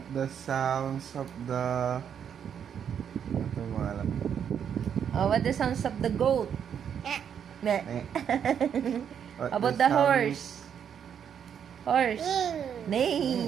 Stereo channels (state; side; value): quieter; left; 8.2 dB